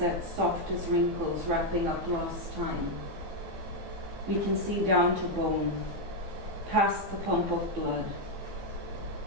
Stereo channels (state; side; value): late; left; 15 ms